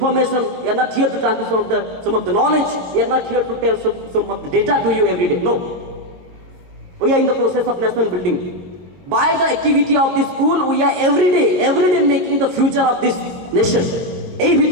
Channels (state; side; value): late; left; 22 ms